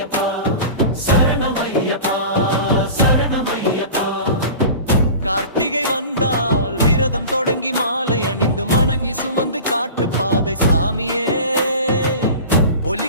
சரணமையப்பா, சரணமையப்பா. கார்த்திகை வந்தால் விரதம் தொடங்கி மாலை அணிந்து மணங்கி சுமந்து காட்டு பாதை சாமியே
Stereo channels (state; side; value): inverted; both; correlation -0.36